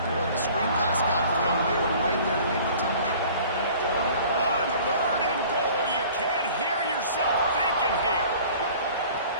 and when the screen pass got thrown, they were right there to make the tackle. On third and goal, you can't hear yourself thinking here.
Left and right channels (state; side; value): inverted; both; correlation -0.48